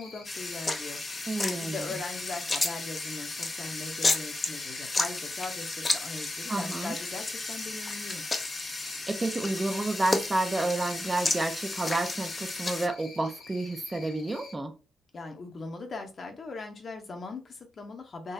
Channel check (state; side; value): normal; both; correlation 0.90